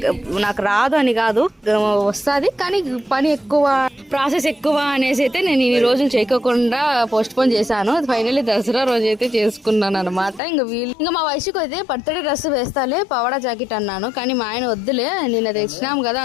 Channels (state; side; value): drops out; right; at 10.4 s